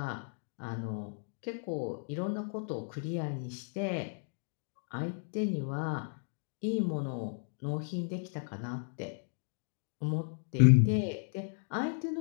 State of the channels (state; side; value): silent; right; digital silence